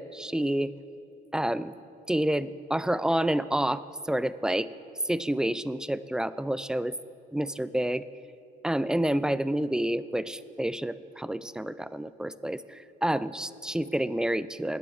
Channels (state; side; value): normal; both; correlation 0.94